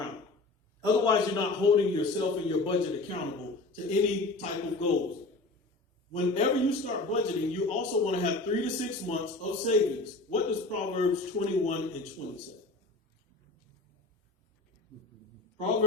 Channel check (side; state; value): right; quieter; 3.2 dB